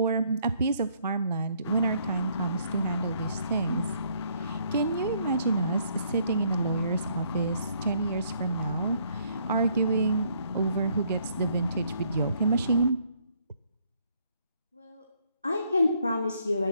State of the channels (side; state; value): both; inverted; correlation -0.67